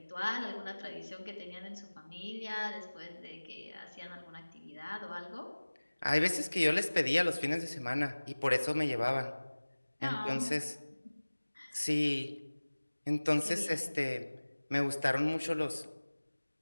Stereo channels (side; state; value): both; inverted; correlation -1.00